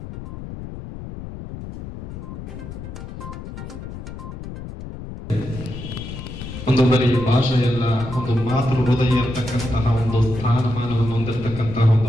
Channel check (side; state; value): left; noise; rumble, 10 dB below the sound